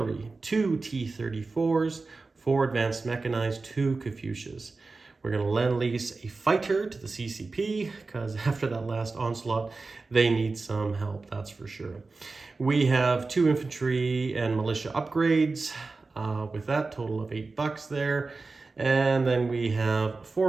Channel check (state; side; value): quieter; left; 3.8 dB